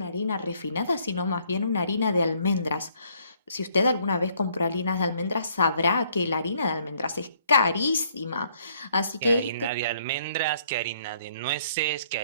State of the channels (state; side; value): inverted; both; correlation -0.65